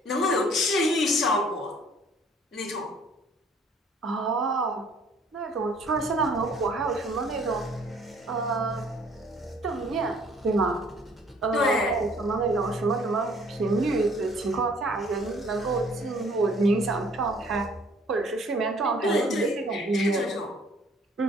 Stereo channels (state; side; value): normal; both; correlation 0.57